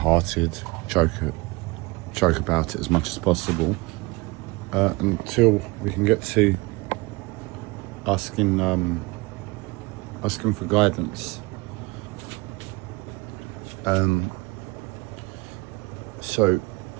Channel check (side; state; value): left; quieter; 24.0 dB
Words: joke about it as much as possible, until we can get to asking for guidance. So